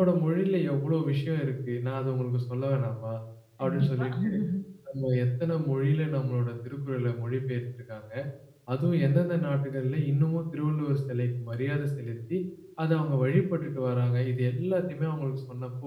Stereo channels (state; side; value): identical; both; correlation 1.00